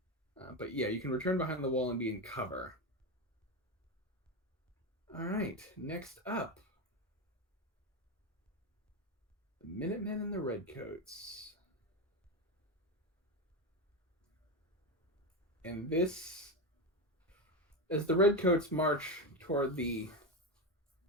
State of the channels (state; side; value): normal; both; correlation 0.15